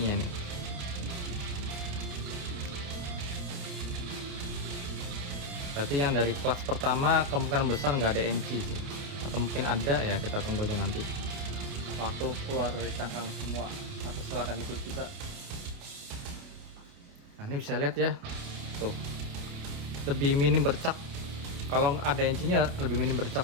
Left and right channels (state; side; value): late; left; 29 ms